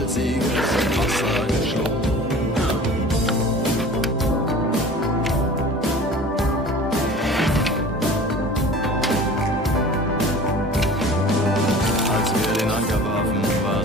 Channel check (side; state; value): both; normal; correlation 0.42